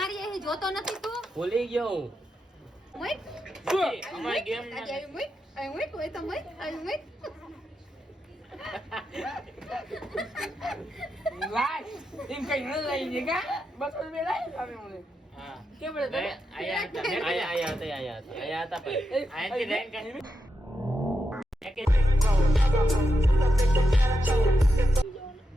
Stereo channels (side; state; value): both; normal; correlation 0.86